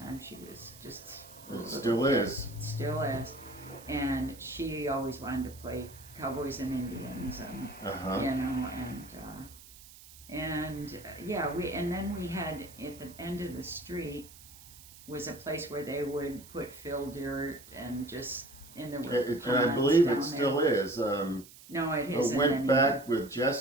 she was just a It little still kid. is. Still is, and she always wanted to play Cowboys and Indians, and Uh-huh. and then we had at the end of the street was a place where they would put fill dirt and just in the And I ponds believe down it still is. No, it I isn't went anymore. back with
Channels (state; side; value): noise; right; hiss, 19 dB below the sound